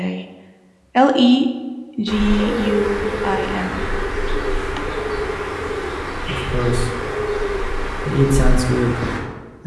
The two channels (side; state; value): both; identical; correlation 1.00